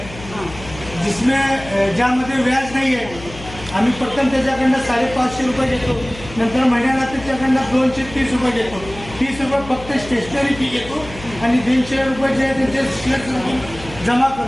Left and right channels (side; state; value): left; noise; hum, 15 dB below the sound